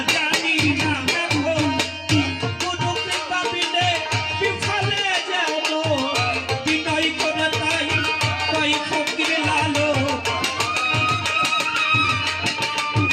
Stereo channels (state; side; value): identical; both; correlation 1.00